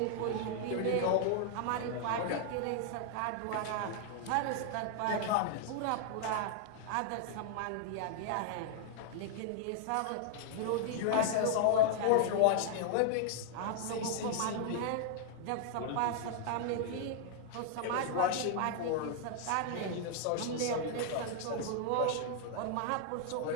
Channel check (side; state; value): both; different; correlation 0.00